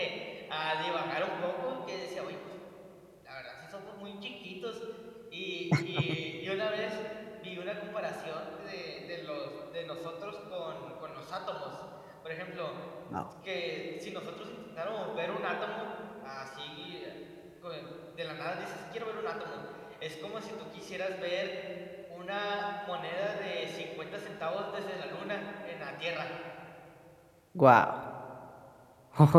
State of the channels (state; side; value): identical; both; correlation 1.00